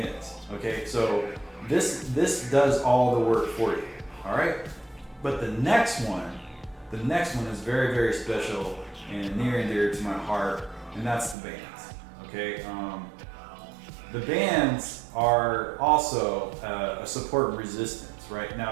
okay? So this does all the work for you, all right? But the next one is very, very special and near and dear to my heart, and that's the bands, okay? The bands are also a support and resistance, right?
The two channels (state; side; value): drops out; left; at 11.4 s